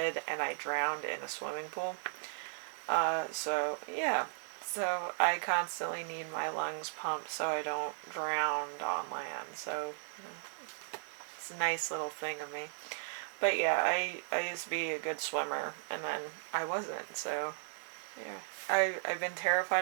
and I drowned in a swimming pool. So yeah, so I constantly need my lungs pumped so I don't drown on land. So it's a nice little thing of me. But yeah, I used to be a good swimmer, and then I wasn't, so yeah. I've been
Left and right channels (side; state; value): left; silent; digital silence